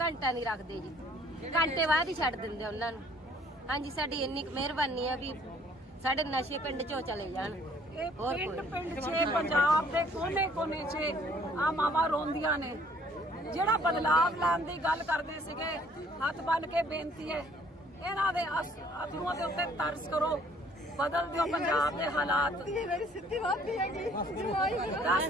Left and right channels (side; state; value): both; normal; correlation 0.58